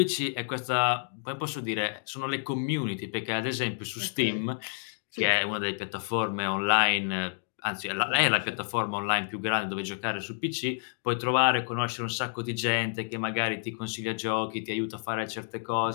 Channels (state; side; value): silent; right; digital silence